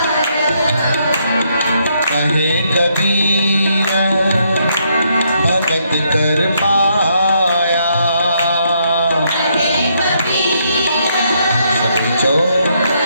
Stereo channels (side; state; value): both; inverted; correlation -0.74